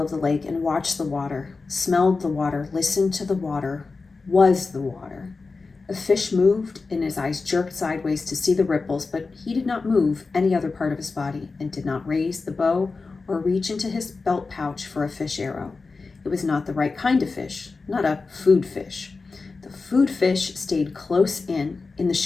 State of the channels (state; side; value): quieter; right; 4.1 dB